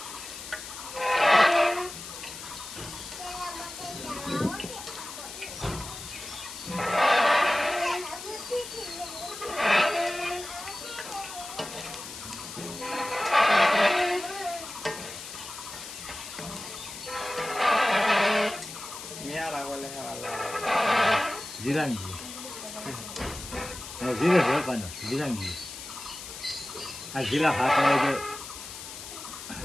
Jirangi. Oh, zira berapa nih? Jirangi. Ah, zira apa aja?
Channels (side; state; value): left; noise; hiss, 11 dB below the sound